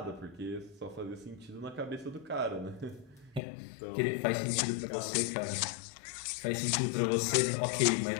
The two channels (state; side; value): drops out; right; at 3.4 s